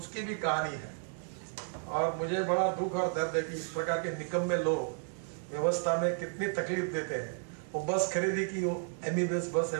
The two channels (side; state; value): left; silent; 56 dB below the other